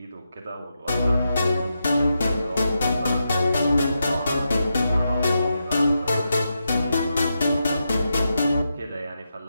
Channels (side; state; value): both; inverted; correlation -0.86